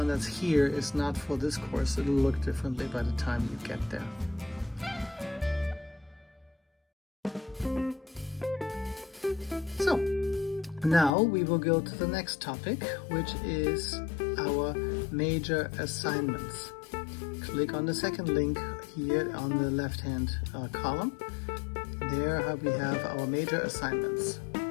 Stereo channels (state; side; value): drops out; right; at 11.1 s